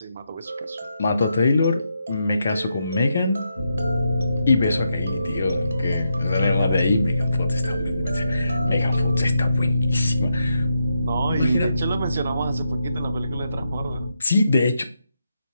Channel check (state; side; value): inverted; both; correlation -0.83